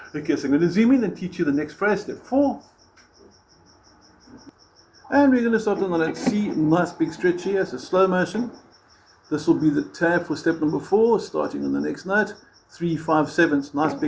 Okay, so I'm going to zoom in and teach you the next phrase, step 4. And we're going to start on the note C, nice big stretch here, so slow motion. This will be the tab for step number 4, starting on the next note. 3, 5, 7, nice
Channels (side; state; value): both; identical; correlation 1.00